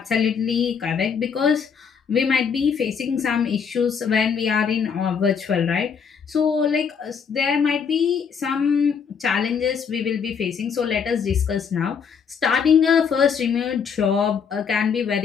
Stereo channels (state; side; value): quieter; right; 6.6 dB